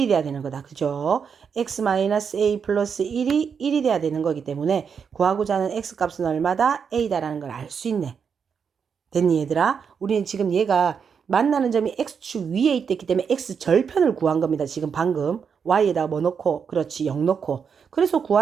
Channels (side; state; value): left; quieter; 6.6 dB